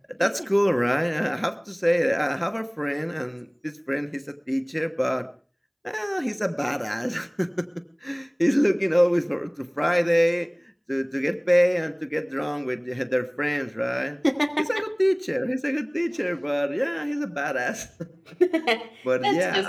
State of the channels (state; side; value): identical; both; correlation 1.00